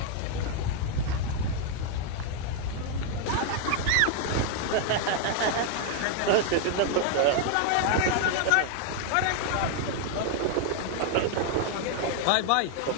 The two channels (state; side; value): different; both; correlation 0.00